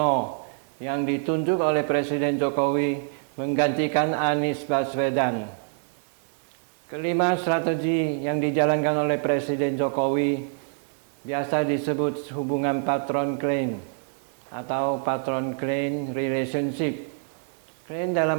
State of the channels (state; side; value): silent; left; digital silence